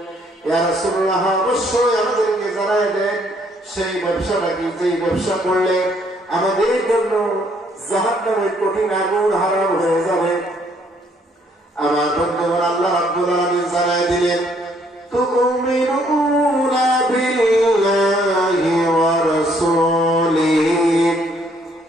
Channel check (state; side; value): normal; both; correlation 0.67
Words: ইয়া রাসূলুল্লাহ, অবশ্যই আমাদেরকে জানায় দেন সেই ব্যবসাটা কি, যেই ব্যবসা করলে আমাদের জন্য জাহান্নামের কঠিন আগুন হারাম হয়ে যাবে। আমার বন্ধুগণ, আল্লাহ রাব্বুল আলামিন জানায় দিলেন, তুমিনুনা বিল্লাহি ওয়া রাসূলিহি